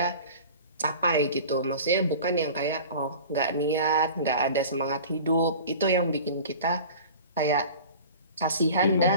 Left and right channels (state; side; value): inverted; both; correlation -0.39